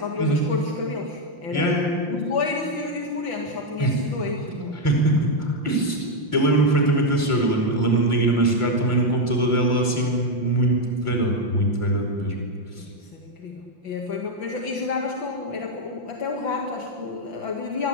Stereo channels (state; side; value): late; left; 5.7 ms